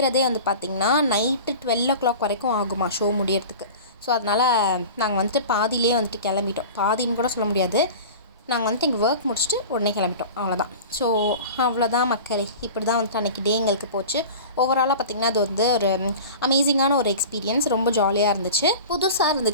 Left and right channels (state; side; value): inverted; both; correlation -0.37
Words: வந்து பார்த்திங்கன்னா நைட்டு 12 o'clock வரைக்கும் ஆகுமா ஷோ முடியறதுக்கு. ஸோ அதனால் நாங்கள் வந்துட்டு பாதியிலே வந்துட்டு கிளம்பிட்டோம். பாதின்னு கூட சொல்ல முடியாது, நாங்கள் வந்துட்டு எங்கள் ஒர்க் முடிச்சுட்டு உடனே கிளம்பிட்டோம். அவ்வளோதான். ஸோ அவ்வளோதான் மக்களே. இப்படி தான் வந்துட்டு அன்றைக்கி டே எங்களுக்கு போச்சு. ஓவராலாக பார்த்திங்கன்னா அது வந்து ஒரு அமேசிங்கான ஒரு எக்ஸ்பீரியன்ஸ். ரொம்ப ஜாலியாக இருந்துச்சு, புதுசாக